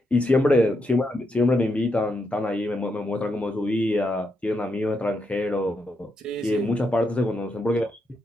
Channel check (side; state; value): both; normal; correlation 0.82